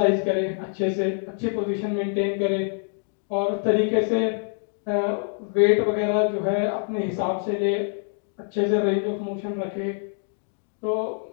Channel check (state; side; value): silent; right; digital silence